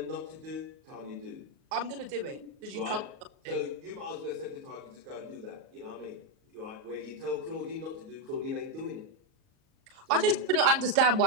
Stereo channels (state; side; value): late; left; 38 ms